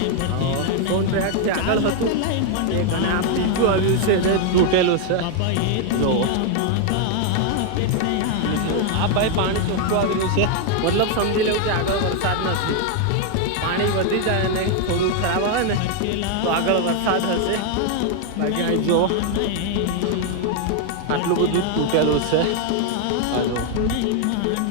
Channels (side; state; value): both; different; correlation 0.00